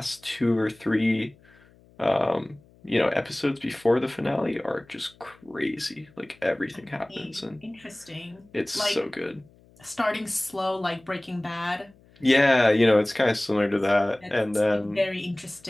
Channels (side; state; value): left; noise; hum, 28 dB below the sound